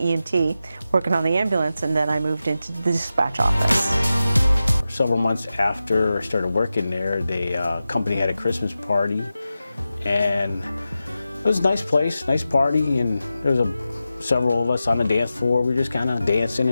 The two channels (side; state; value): both; inverted; correlation -0.92